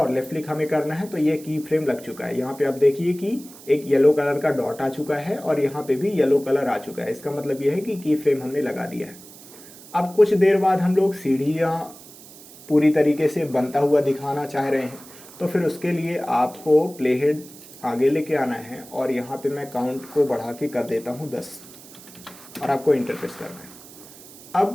लेफ्ट क्लिक हमें करना है, तो ये की फ्रेम लग चुका है। यहाँ पे आप देखिए कि एक येलो कलर का डॉट आ चुका है और यहाँ पे भी येलो कलर आ चुका है। इसका मतलब ये है कि की फ्रेम हमने लगा दिया है। अब कुछ देर बाद हम लोग सीढ़ियाँ पूरी तरीके से बनता हुआ दिखाना चाह रहे हैं, तो फिर उसके लिए आपको प्ले हेड आगे लेके आना है और यहाँ पे मैं काउंट को बढ़ा के कर देता हूँ 10 और आपको इंटर प्रेस करना है।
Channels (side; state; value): right; noise; hiss, 19 dB below the sound